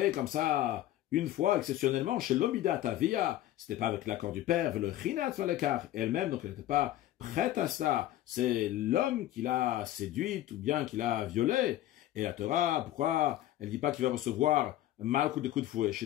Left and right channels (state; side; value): quieter; right; 13.9 dB